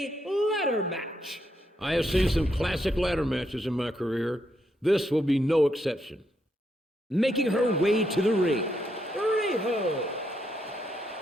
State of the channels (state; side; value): normal; both; correlation 0.79